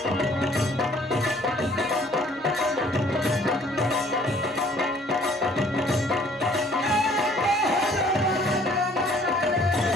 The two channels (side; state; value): both; normal; correlation 0.58